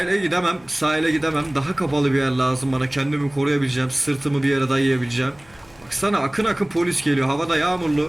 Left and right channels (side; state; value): left; noise; hum, 28 dB below the sound